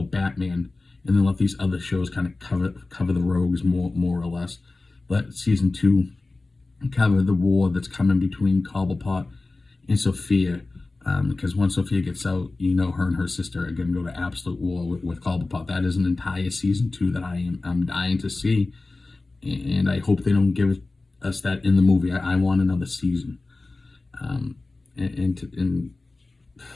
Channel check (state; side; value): quieter; right; 3.3 dB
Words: Batman, and then let these other shows kind of cover the rogues more or less. Let season 2 cover the war that's coming between Cobblepot and Sophia, because once Sophia gets out, her and her sister are going to go to absolute war with Cobblepot. That is an entire season 2 that I'm dying to see, and I hope they don't give us that in the movie. I want another season, and